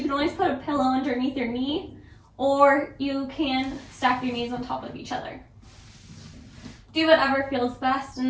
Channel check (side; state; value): both; identical; correlation 1.00